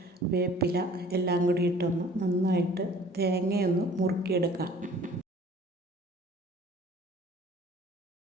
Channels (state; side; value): normal; both; correlation 0.50